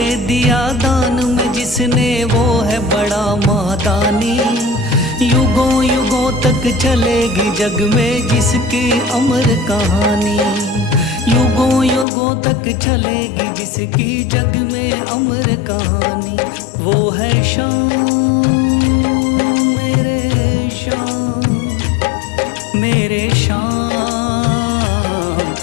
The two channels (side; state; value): right; drops out; at 12.1 s